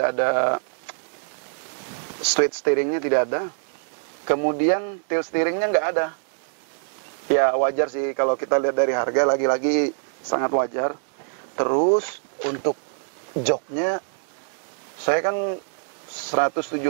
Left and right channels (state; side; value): silent; left; digital silence